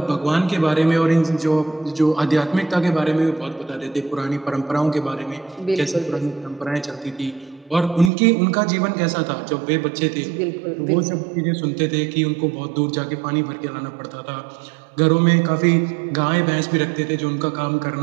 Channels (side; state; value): left; drops out; at 8.1 s